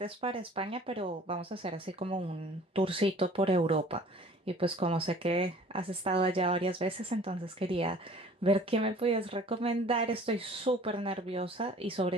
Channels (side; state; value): both; normal; correlation 0.49